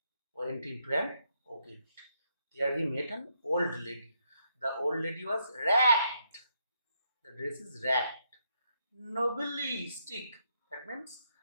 went into an orchid. There he met an old lady. The old lady was ragged. The dress is ragged. Nobly stick. That means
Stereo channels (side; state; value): both; inverted; correlation -0.77